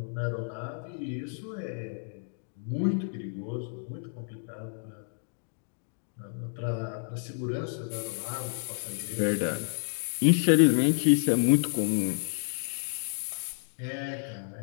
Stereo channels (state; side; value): silent; right; digital silence